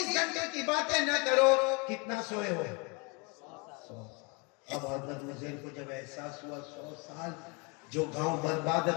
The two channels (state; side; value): quieter; right; 31.2 dB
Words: گھنٹے کی باتیں نہ کرو. کتنا سوئے ہو؟ 100. اب حضرت عزیر کو جب احساس ہوا 100 سال جو گاؤں برباد